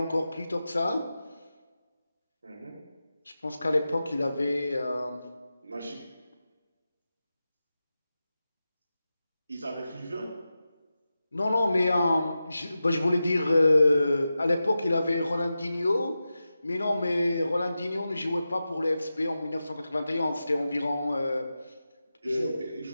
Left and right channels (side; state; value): both; inverted; correlation -0.92